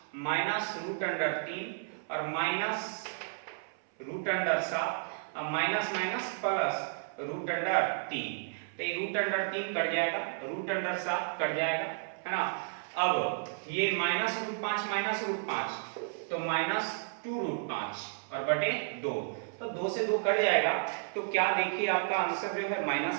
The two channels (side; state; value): left; silent; 56 dB below the other